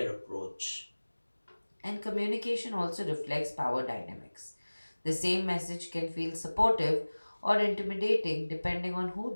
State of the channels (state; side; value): inverted; both; correlation -1.00